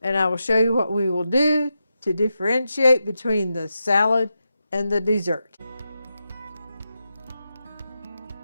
and I will show you what we will do to differentiate between the salad and the dessert.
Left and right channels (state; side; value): inverted; both; correlation -0.88